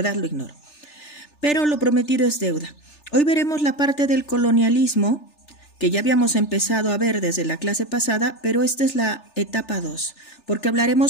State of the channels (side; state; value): right; late; 3.4 ms